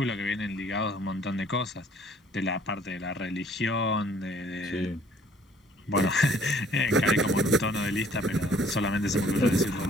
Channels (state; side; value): normal; both; correlation 0.58